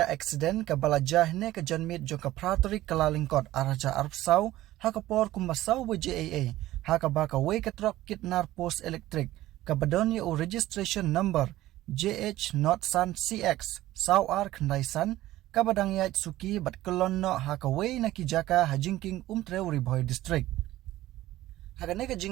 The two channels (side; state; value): left; quieter; 15.6 dB